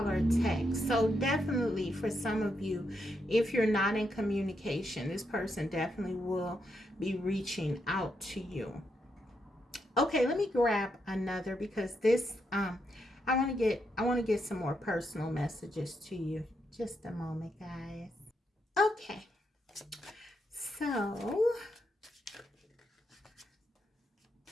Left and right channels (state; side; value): normal; both; correlation 0.81